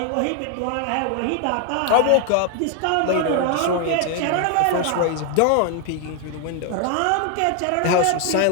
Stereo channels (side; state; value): both; different; correlation 0.00